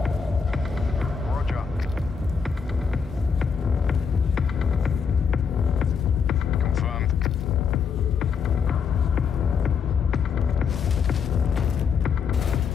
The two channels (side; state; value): right; quieter; 6.2 dB